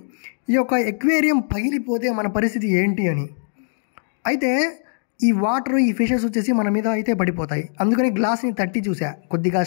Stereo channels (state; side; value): silent; right; digital silence